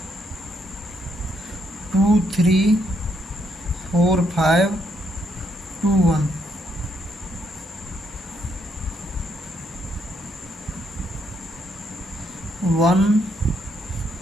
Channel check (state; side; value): normal; both; correlation 0.75